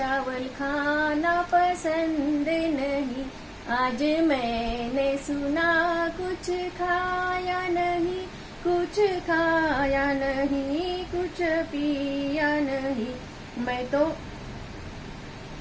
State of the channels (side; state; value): both; identical; correlation 1.00